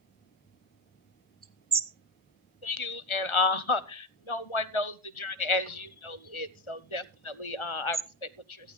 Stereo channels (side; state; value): right; late; 1.4 ms